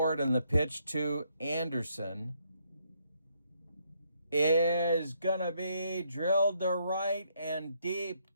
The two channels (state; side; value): inverted; both; correlation -0.73